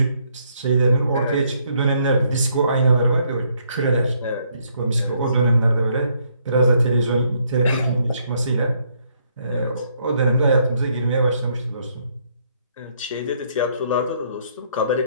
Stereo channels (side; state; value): both; inverted; correlation -0.70